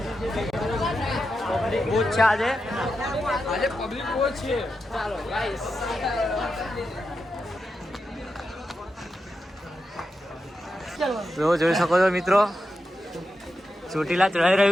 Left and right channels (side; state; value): both; normal; correlation 0.88